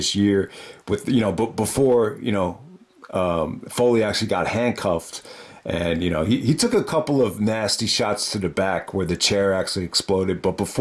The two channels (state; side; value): identical; both; correlation 1.00